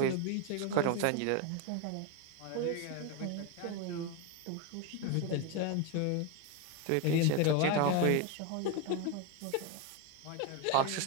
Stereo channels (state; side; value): different; both; correlation 0.02